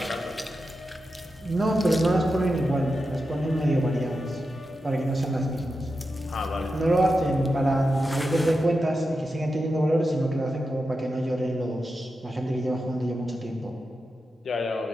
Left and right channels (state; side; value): normal; both; correlation 0.89